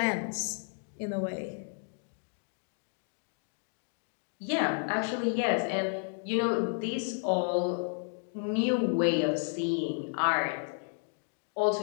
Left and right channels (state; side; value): silent; right; 55 dB below the other